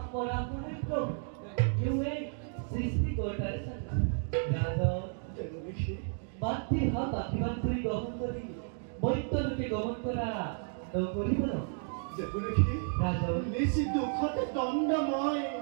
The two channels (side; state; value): left; silent; 56 dB below the other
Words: করা করে প্রভু এই সৃষ্টিকর্তার সাথে রাজন মাতৃ হাত আশীর্বাদ করে গ্রহণ করি মৈত্যরূপে গমন করা নকরিব না রাজন নিশি দুঃখতে দণ্ডময়